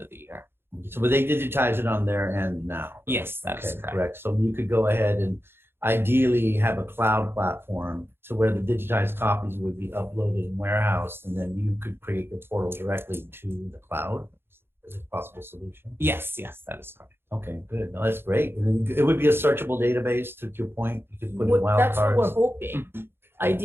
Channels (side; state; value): left; late; 0.11 ms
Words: of the year. So but they digitize it on their end now? Yes, that is correct. So you could go ahead and ideally have a cloud platform to where the digitized copies would be uploaded and warehoused, and then you could create the portal directly to the cloud. Is it a possible solution? Yes, that is correct. Okay, good. No, that's great. And then it would be a searchable database, to your point. You could put in wildcards. That's what we're hoping.